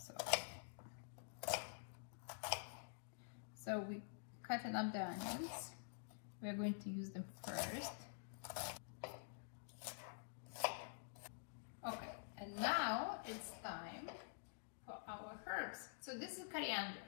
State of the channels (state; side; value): silent; right; digital silence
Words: So we cutting up the onions. We're going to use them first. Okay, and now it's time for our herbs. So this is coriander.